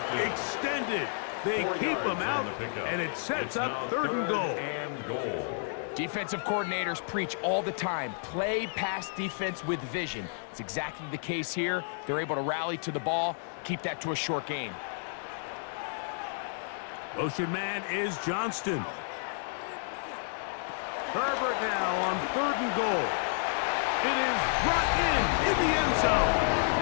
extended. They keep him out, and it sets up third and goal. Defensive coordinators preach all the time, play pass defense with vision. It's exactly the case here. They're able to rally to the ball, keep that to a short gain. Motion man is Johnston. Herbert now on third and goal. It is brought in the end zone.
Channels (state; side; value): silent; right; digital silence